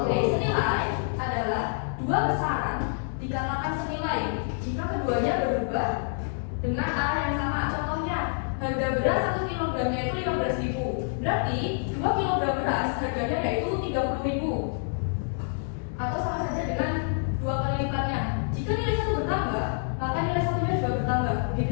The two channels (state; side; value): silent; right; digital silence